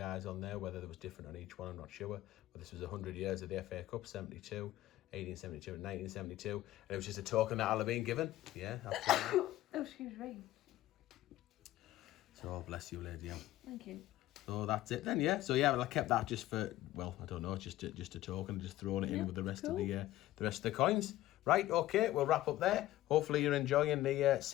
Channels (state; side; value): quieter; right; 15.3 dB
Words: on there, whether there was different on each one, I'm not sure. But this was 100 years of the FA Cup, 72, 1872 and 1972. And it was just a token that I'll have been given. Yeah, absolutely. Oh, excuse me. So, bless you, Lady M. Thank you. So that's it then, yeah. So yeah, well, I kept that just for, well, I don't know, just a token, just throwing it in with the rest of the rest of the coins. Right, okay, we'll wrap up there. Hopefully you're enjoying the